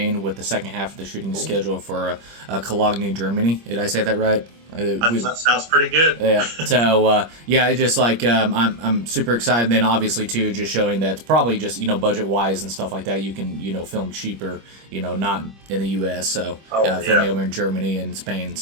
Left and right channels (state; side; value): late; left; 25 ms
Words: with the second half of the shooting schedule for Cologne, Germany. Did I say that right? That sounds pretty good. Yeah. So yeah, it's just like I'm super excited. And then obviously too, just showing that it's probably just budget wise and stuff like that. You can film cheaper, not in the U.S. So filming over in Germany and Spain and